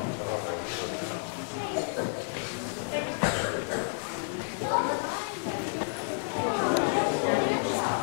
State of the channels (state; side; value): silent; right; 58 dB below the other